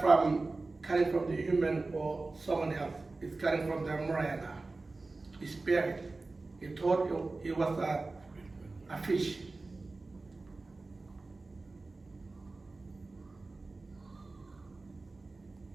coming from the human or someone else. It's coming from the Marcia, his spirit. He thought he was a fish.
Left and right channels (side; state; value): left; quieter; 3.5 dB